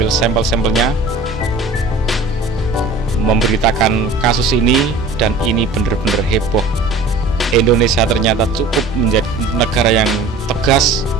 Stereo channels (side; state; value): left; quieter; 3.3 dB